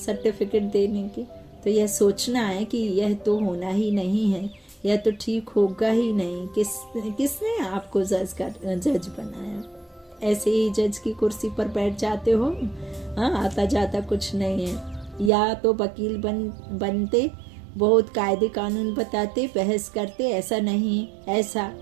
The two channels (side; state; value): left; drops out; at 15.3 s